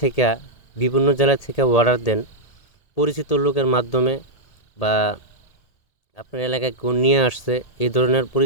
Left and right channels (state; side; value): late; right; 1.7 ms